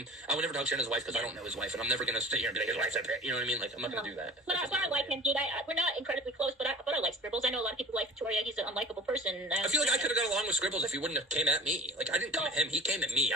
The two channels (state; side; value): normal; both; correlation 0.42